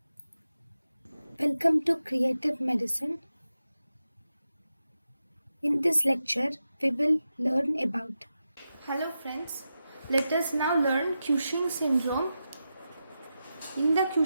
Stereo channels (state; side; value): inverted; both; correlation -0.90